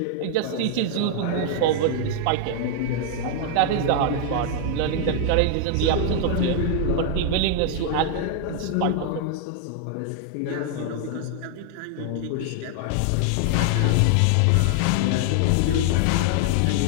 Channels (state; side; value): different; both; correlation 0.00